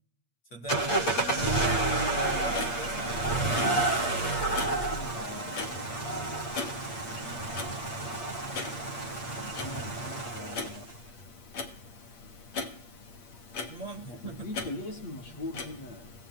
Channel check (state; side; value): late; right; 8.5 ms